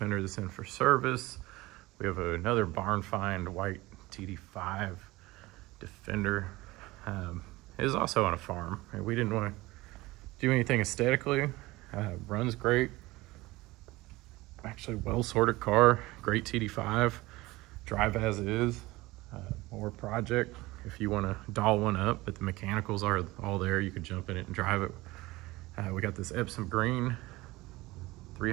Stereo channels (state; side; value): quieter; left; 20.1 dB